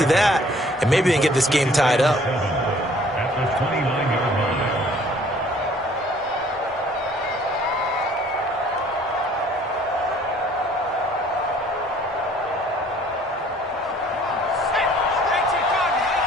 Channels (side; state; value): both; normal; correlation 0.56